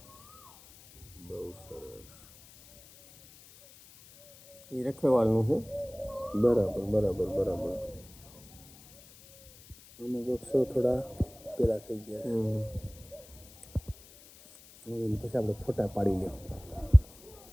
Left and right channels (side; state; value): left; noise; hiss, 22 dB below the sound